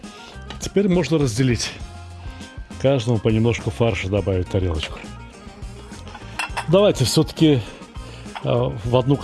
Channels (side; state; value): both; identical; correlation 1.00